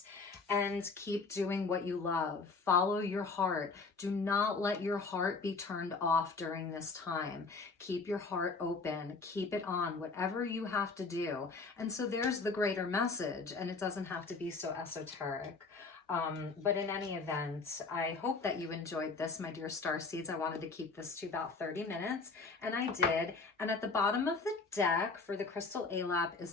and keep doing what you love. Follow your heart. Do not let your heart be turned off during this time. Keep your heart open. Keep it on, whatever you have to do. And so there's the greater message, and it doesn't have to be so esoteric. But in any event, I hope that you enjoyed this, my dear Starseeds. I wanted to keep this to about 30 minutes, and I did. And at the bottom of the deck for the crystal ALAP is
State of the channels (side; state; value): right; quieter; 4.2 dB